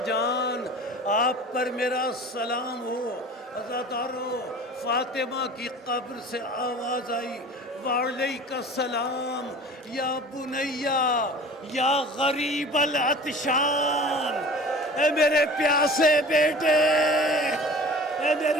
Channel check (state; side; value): normal; both; correlation 0.42